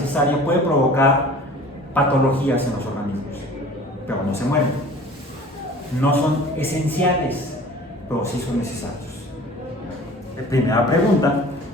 puede provocar patologías en los organismos, pero no se mueren. No son esenciales, pero sí son necesarios. Primera pregunta:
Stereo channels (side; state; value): both; normal; correlation 0.44